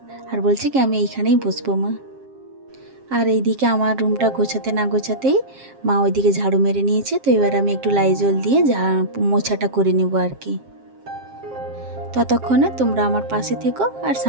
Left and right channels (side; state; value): left; late; 7.5 ms